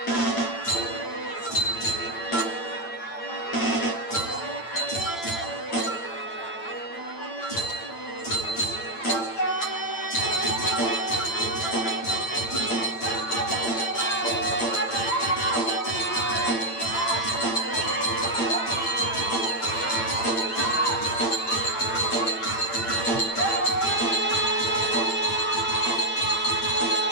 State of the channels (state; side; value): late; right; 8.8 ms